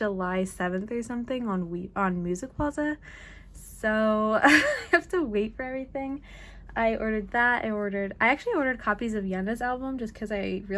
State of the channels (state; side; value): identical; both; correlation 1.00